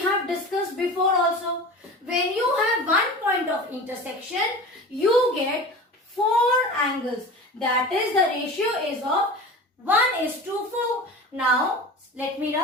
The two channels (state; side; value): normal; both; correlation 0.34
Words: have discussed before also. When you have one point of intersection, you get 4 angles. That is, the ratio is of 1:4. Now, let me